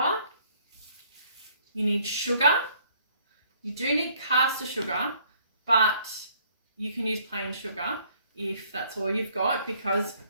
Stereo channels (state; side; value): inverted; both; correlation -0.62